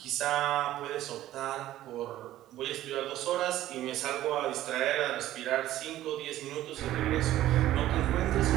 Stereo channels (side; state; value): left; quieter; 14.0 dB